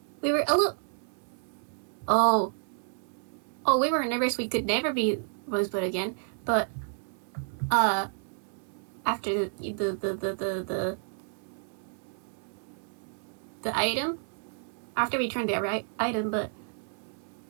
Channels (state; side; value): silent; left; 58 dB below the other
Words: we were a little... Oh, we were nervous we could never be Rosebud again, but, after the item, after we turned the right item, but,